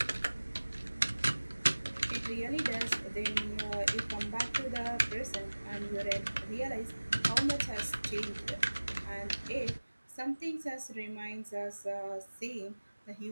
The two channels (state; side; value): inverted; both; correlation -1.00